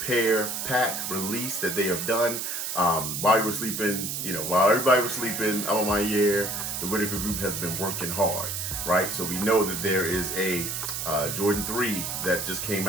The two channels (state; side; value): noise; right; hiss, 3 dB below the sound